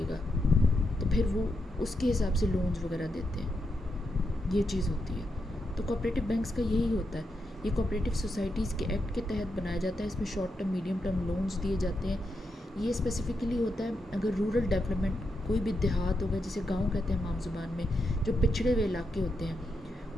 گا، تو پھر وہ اس کے حساب سے لونز وغیرہ دیتے ہیں. یہ چیز ہوتی ہے. تو کوآپریٹو بینکس کا یہی ہوتا ہے یہ کوآپریٹیو سوسائٹیز کے ایکٹ کے تحت بنایا جاتا ہے. اس میں short term medium term loans دیے جاتے ہیں. یہ اسپیسیفکلی ہوتا ہے اگر رورل ڈیولپمنٹ کوئی بھی دیہات ہوگا جسے گاؤں کہتے ہیں ہم عام زبان میں, جو پچھڑے ہوئے علاقے ہوتے ہیں,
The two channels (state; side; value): normal; both; correlation 0.84